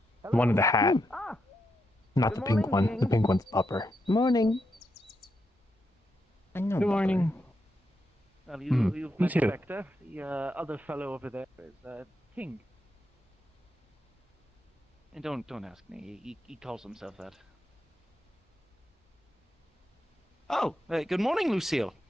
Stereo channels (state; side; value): normal; both; correlation 0.83